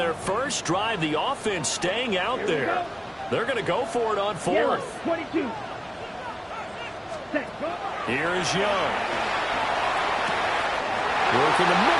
first drive, the offense staying out there. They're going to go for it on 4th. Here is Young. Work in the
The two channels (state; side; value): identical; both; correlation 1.00